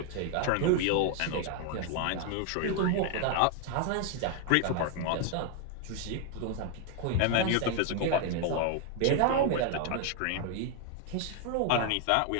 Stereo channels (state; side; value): different; both; correlation 0.00